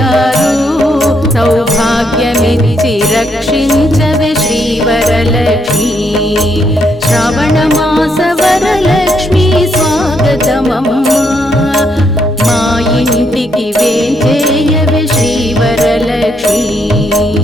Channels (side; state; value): both; normal; correlation 0.75